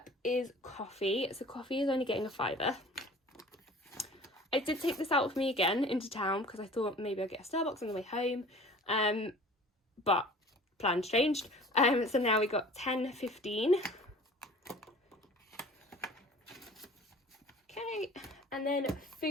is coffee. So coffee is only getting a £5. I did take this out with me again into town because I thought maybe I'd get a Starbucks on the way home, but plans changed. So now we got 10.15. Okay, and then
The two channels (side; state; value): both; normal; correlation 0.45